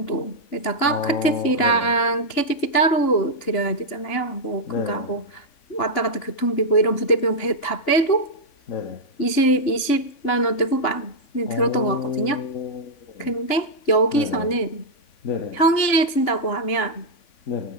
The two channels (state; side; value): late; right; 3.5 ms